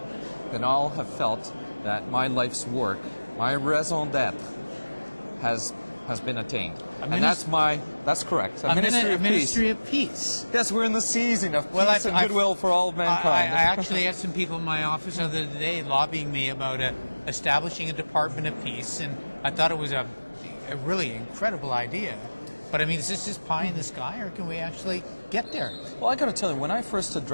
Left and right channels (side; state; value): both; inverted; correlation -1.00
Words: then I'll have felt that my life's work, my raison d'etre, has been attained. And that's correct. A ministry of peace. Yes, we're in the season of peace and goodwill for all of mankind. I actually had some people in my office the other day lobbying me about establishing a Department of Peace, and I thought it was a really incredible idea. But I mean, is this just pie in the sky, or can we actually get there? Well, I got to tell you, when I first